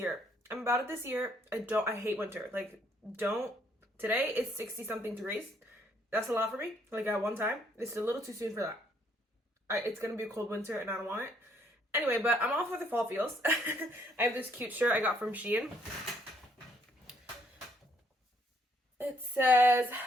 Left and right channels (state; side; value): normal; both; correlation 0.68